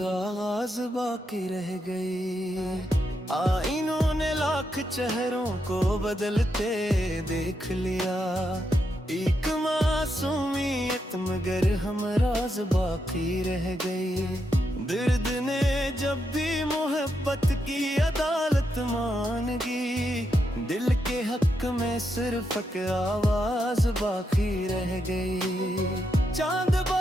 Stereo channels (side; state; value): both; normal; correlation 0.82